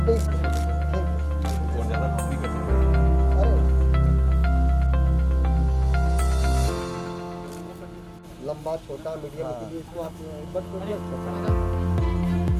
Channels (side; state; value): both; identical; correlation 1.00